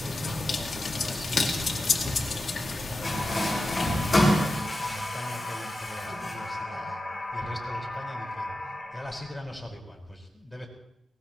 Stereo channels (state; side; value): normal; both; correlation 0.92